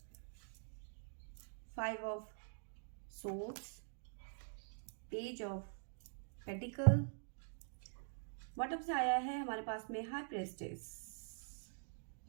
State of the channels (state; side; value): silent; left; digital silence